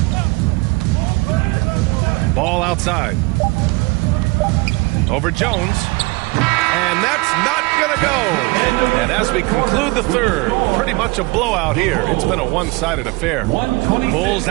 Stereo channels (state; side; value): quieter; left; 25.0 dB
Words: Ball outside. Over Jones. And that's not going to go. And as we conclude the third, pretty much a blowout here. It's been a one-sided affair. Bulls